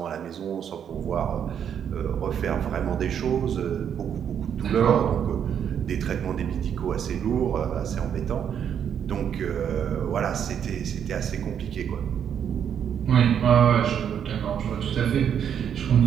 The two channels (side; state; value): left; quieter; 8.5 dB